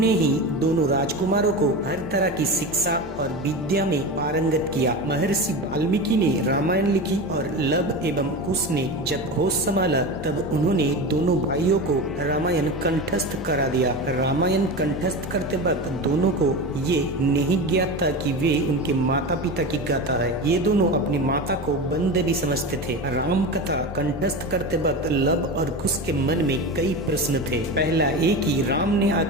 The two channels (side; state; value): both; normal; correlation 0.25